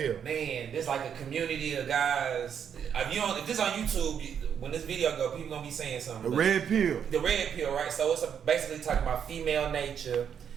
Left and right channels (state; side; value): quieter; left; 8.0 dB